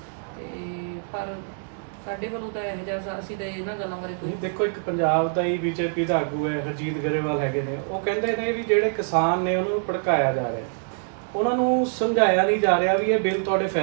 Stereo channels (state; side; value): silent; left; digital silence